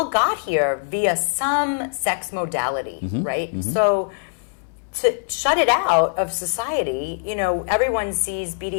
got here via some sex modality, right? So to shut it out of society, everyone sees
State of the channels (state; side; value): silent; right; digital silence